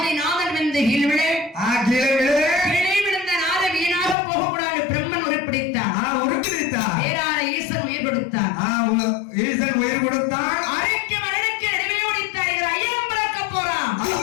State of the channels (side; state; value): right; drops out; at 4.2 s